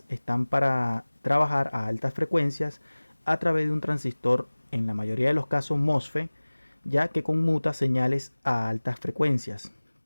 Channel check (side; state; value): both; inverted; correlation -1.00